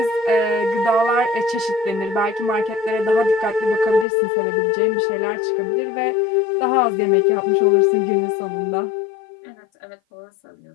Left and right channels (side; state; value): right; drops out; at 4.0 s